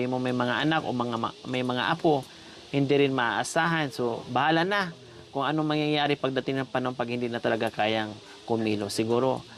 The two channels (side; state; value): both; identical; correlation 1.00